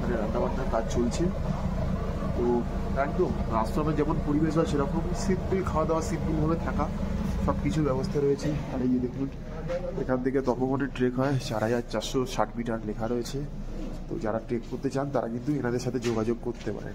রান্নাবান্নার কাজ চলছে। তো একদম আশ্রমের যেমন পরিবেশ হয় সেরকম সিম্পল খাওয়া দাওয়া, সিম্পলভাবে থাকা, সব কিছু ব্যবস্থা রয়েছে। আর এই যে দেখুন, এখান থেকে তপবনের ট্রেক হয় 4460 মিটার লেখা রয়েছে। তো যারা ট্রেক করতে চান তারা কিন্তু এনাদের সাথে যোগাযোগ করতে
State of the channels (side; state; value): both; identical; correlation 1.00